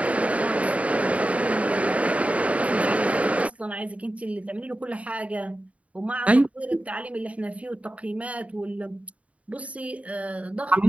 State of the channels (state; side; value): late; left; 0.066 ms